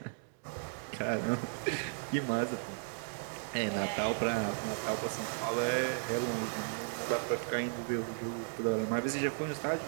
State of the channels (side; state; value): left; silent; digital silence